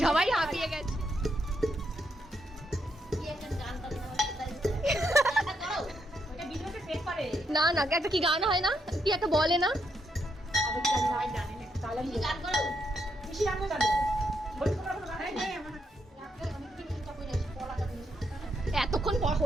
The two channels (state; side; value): normal; both; correlation 0.78